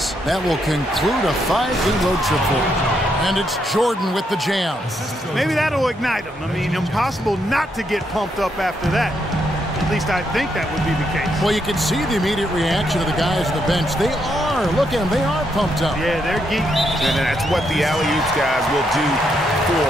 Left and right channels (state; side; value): normal; both; correlation 0.78